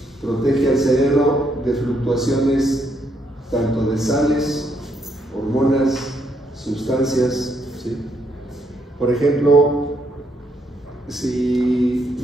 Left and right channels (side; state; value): both; normal; correlation 0.74